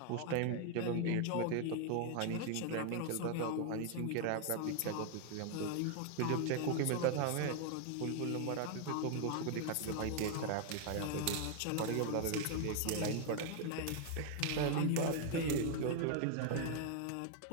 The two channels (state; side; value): different; both; correlation 0.00